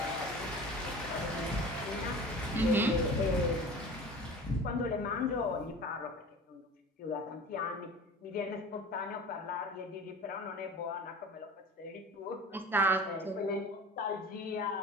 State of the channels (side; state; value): both; normal; correlation 0.38